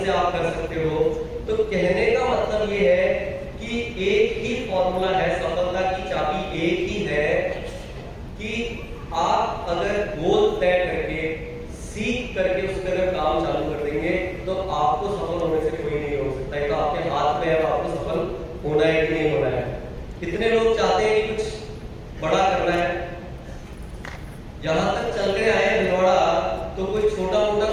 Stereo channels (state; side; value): identical; both; correlation 1.00